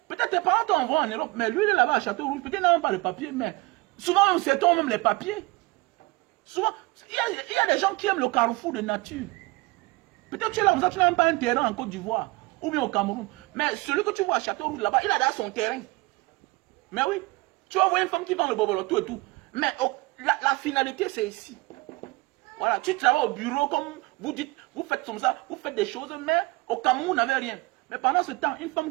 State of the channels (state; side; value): quieter; left; 22.8 dB